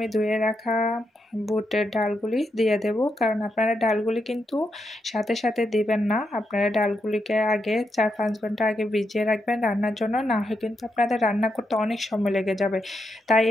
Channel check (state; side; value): normal; both; correlation 0.83